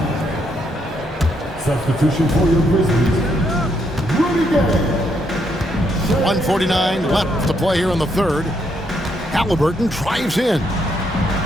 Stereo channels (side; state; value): both; normal; correlation 0.75